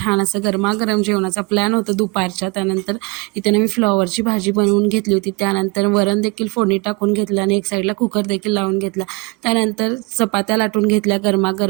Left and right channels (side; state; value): left; quieter; 28.0 dB